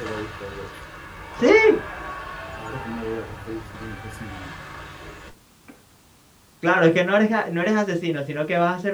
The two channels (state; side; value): identical; both; correlation 1.00